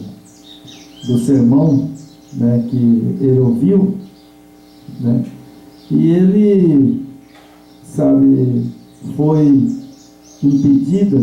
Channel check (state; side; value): identical; both; correlation 1.00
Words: do sermão, né, que ele ouviu, né, e ele, sabe, foi impedida,